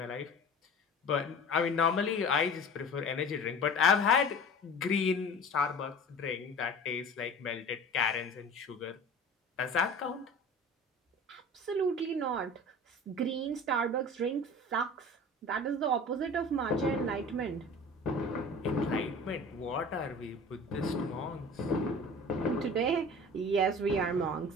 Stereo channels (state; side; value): normal; both; correlation 0.40